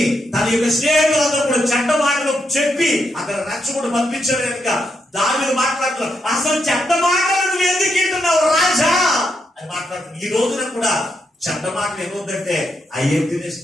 తన యొక్క స్నేహితులందరూ కూడా చెడ్డ మాటలు చెప్పి అక్కడ రెచ్చగొట్టి పంపించారు కనుక దావీదు మాట్లాడుతున్నారు, అసలు చెడ్డ మాటలు నువ్వు ఎందుకు వింటున్నావు రాజా అని మాట్లాడుతున్నావు. ఈ రోజున కూడా చెడ్డ మాటలు ఏమవుతుందంటే అయ్యేం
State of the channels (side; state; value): both; normal; correlation 0.81